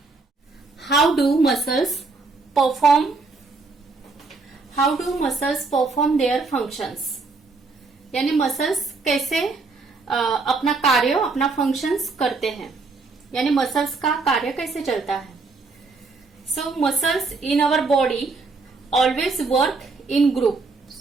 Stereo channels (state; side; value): quieter; left; 3.9 dB